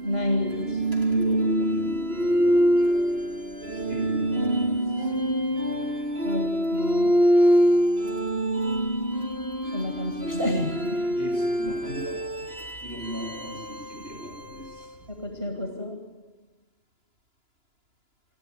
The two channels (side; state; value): left; late; 2.9 ms